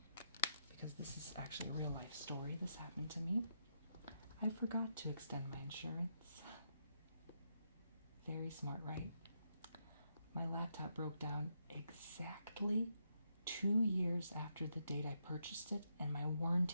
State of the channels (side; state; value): both; inverted; correlation -0.80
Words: because this is actually a real life story. This happened to me. I forgot to extend my insurance. Very smart, right? My laptop broke down exactly 2 years after the date I purchased it, and my